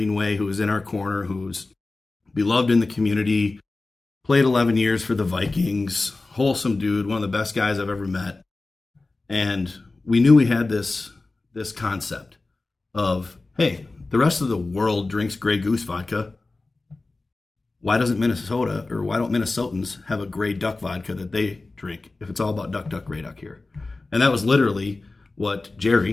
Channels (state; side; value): quieter; right; 3.4 dB